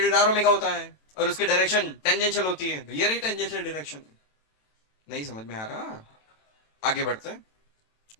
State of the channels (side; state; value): right; late; 27 ms